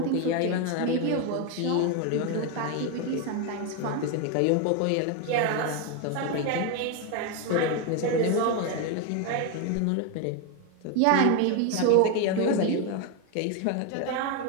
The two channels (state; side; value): different; both; correlation 0.01